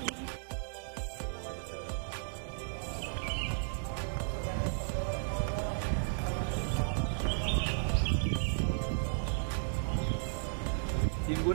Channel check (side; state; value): left; silent; digital silence